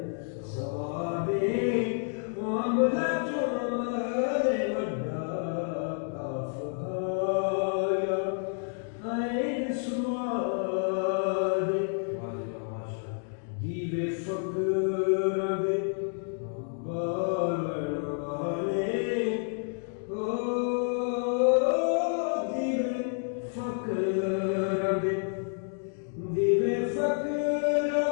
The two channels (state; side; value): silent; right; 58 dB below the other